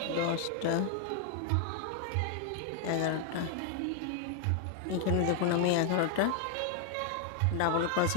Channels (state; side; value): different; both; correlation 0.00